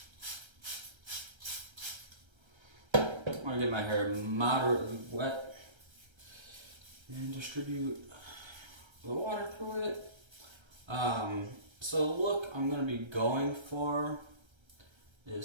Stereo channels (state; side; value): late; left; 1.3 ms